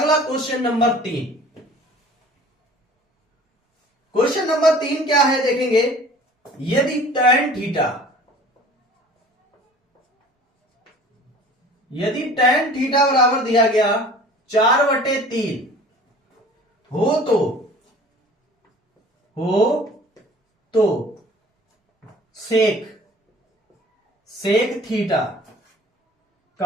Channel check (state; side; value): normal; both; correlation 0.47